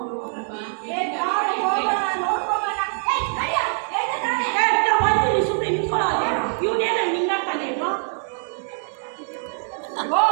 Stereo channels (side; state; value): left; silent; 60 dB below the other